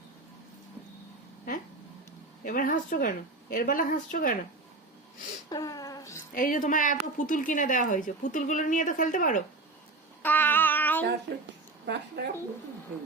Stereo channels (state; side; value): quieter; left; 3.3 dB